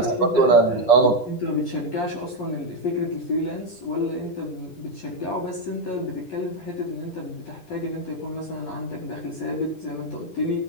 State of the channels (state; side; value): late; right; 10 ms